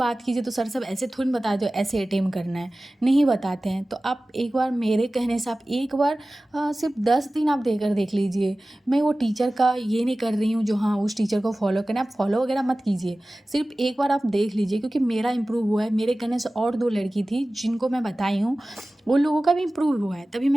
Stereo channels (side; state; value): both; normal; correlation 0.97